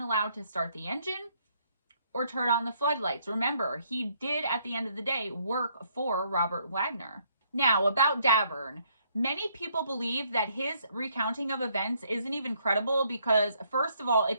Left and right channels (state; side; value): inverted; both; correlation -0.69